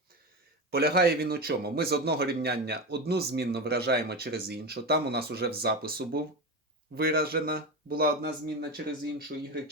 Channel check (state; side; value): normal; both; correlation 0.20